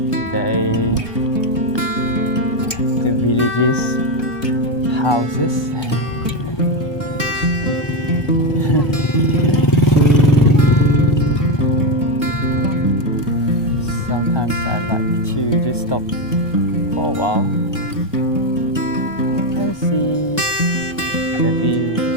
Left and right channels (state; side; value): late; right; 1.2 ms